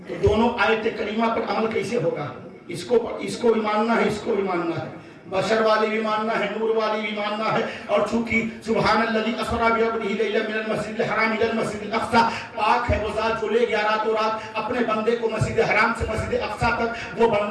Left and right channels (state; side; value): identical; both; correlation 1.00